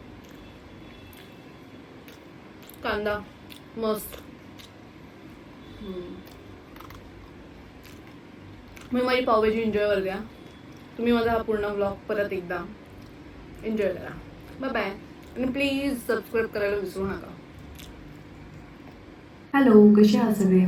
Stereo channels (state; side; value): identical; both; correlation 1.00